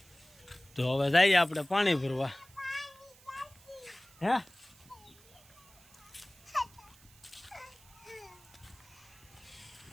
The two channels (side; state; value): right; noise; hiss, 25 dB below the sound